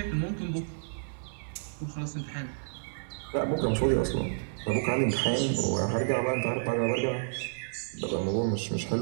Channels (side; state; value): left; silent; 58 dB below the other